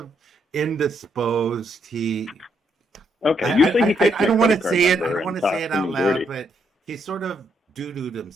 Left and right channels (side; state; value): both; normal; correlation 0.75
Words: indisposed. Okay, usually he takes I don't want to credit card say it. I number don't and want to talks say it to out me loud, dirty. but he sort of doo-dooed